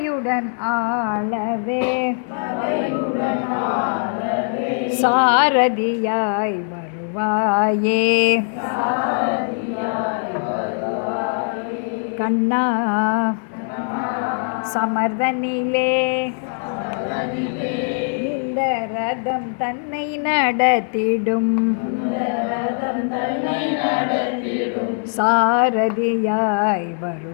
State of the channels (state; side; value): silent; right; 59 dB below the other